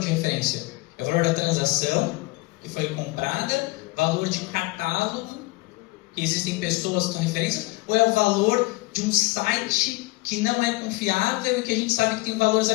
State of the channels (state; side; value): quieter; right; 23.5 dB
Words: referência? É o valor da transação que foi comprada, valor de catálogo, que existem pessoas que são referências, ou é o valor de um site que não é confiável e que a gente sabe que tem valores